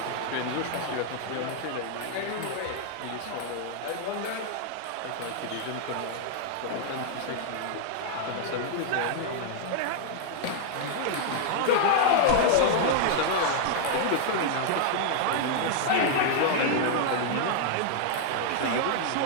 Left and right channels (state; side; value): different; both; correlation -0.01